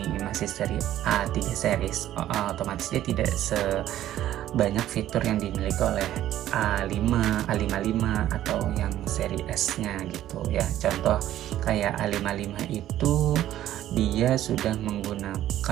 masih seri A3 series, otomatis dia tidak sebanyak fitur yang dimiliki oleh A5, A55 atau yang seri S-nya gitu ya. Contoh kayak A55 itu dia sudah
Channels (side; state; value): left; quieter; 12.9 dB